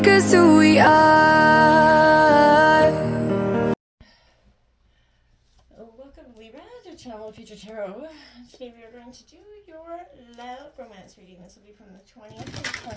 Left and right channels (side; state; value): both; identical; correlation 1.00